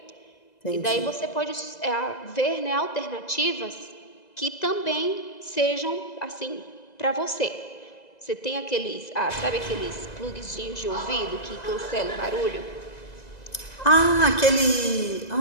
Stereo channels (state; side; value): late; right; 2.0 ms